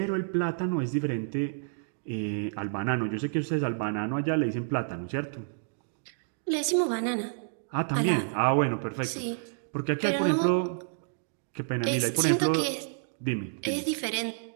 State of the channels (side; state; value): left; silent; digital silence